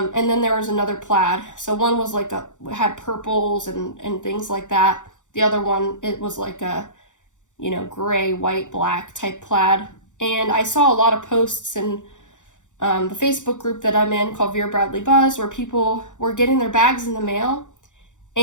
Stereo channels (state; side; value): late; right; 0.86 ms